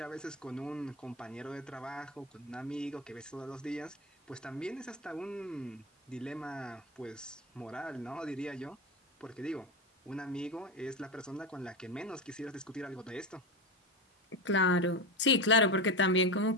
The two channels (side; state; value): both; normal; correlation 0.19